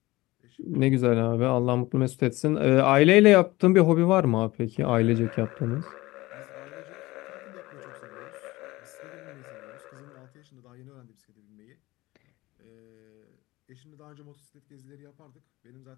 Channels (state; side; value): quieter; right; 19.8 dB